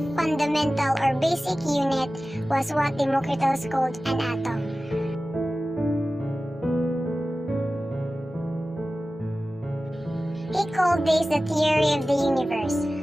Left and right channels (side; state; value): both; normal; correlation 0.96